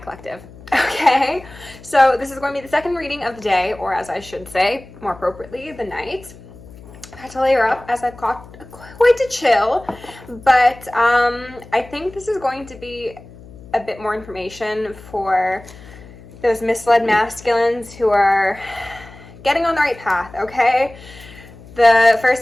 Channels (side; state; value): left; noise; hum, 19 dB below the sound